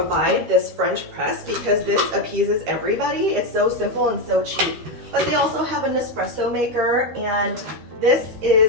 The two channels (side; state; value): left; late; 13 ms